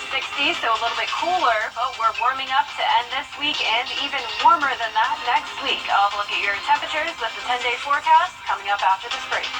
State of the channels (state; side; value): identical; both; correlation 1.00